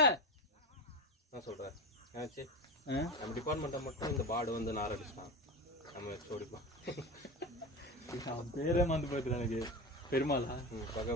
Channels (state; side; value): normal; both; correlation 0.23